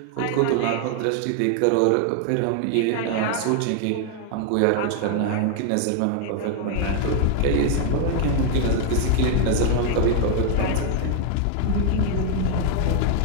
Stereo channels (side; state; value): both; different; correlation 0.00